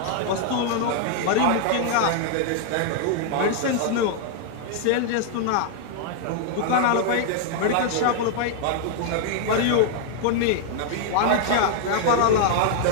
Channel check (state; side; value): different; both; correlation -0.01